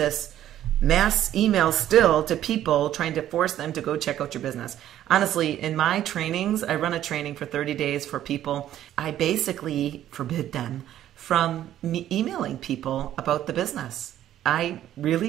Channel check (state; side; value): quieter; left; 12.0 dB